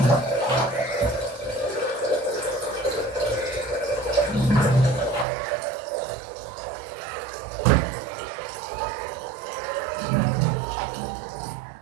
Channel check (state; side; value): drops out; left; at 5.2 s